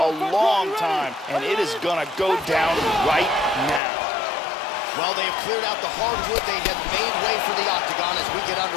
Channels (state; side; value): drops out; right; at 3.8 s